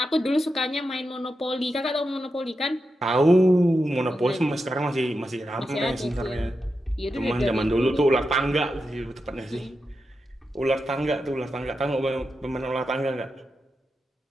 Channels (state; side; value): normal; both; correlation 0.88